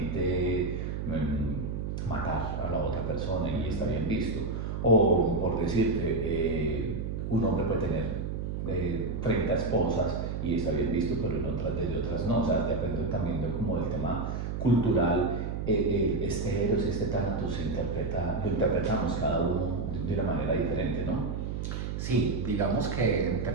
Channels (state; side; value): noise; right; hum, 3 dB below the sound